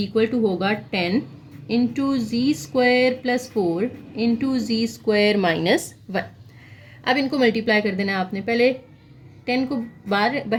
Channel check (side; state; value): both; identical; correlation 1.00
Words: to होगा 10 into z square plus 4 into z squared -1। अब इनको मल्टीप्लाई कर देना आपने, पहले 10 को